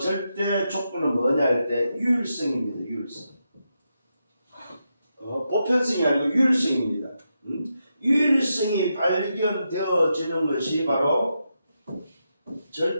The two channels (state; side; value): inverted; both; correlation -0.85